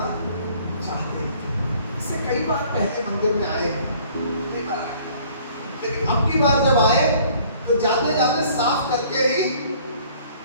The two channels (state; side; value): inverted; both; correlation -0.56